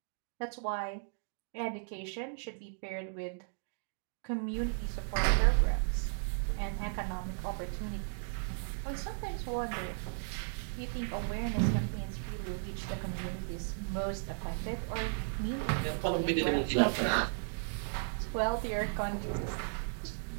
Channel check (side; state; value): left; silent; digital silence